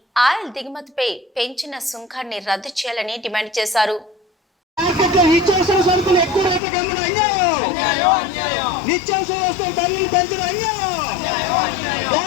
ఆయిల్ దిగుమతిపై పెంచిన సుంకాన్ని రద్దు చేయాలని డిమాండ్ చేశారు.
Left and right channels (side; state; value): right; drops out; at 6.6 s